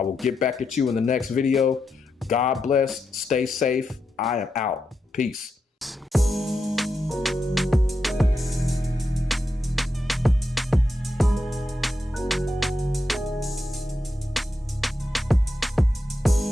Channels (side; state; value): both; normal; correlation 0.85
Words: will get back at you in the next video. God bless. Stay safe. I am out. Peace.